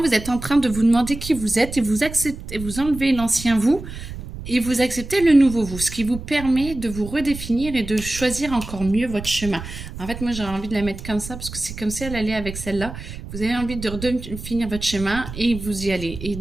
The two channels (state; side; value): noise; right; rumble, 11 dB below the sound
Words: êtes en train de vous demander qui vous êtes et vous acceptez, vous enlevez l'ancien vous. Et vous acceptez le nouveau vous, ce qui vous permet de vous redéfinir et de choisir encore mieux votre chemin. En fait, moi, j'aurais envie de la mettre comme ça parce que c'est comme si elle allait avec celle-là. Vous avez envie de redéfinir votre chemin et vous y allez. Et